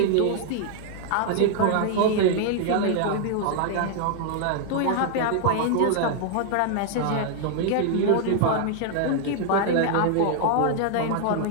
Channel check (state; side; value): different; both; correlation 0.00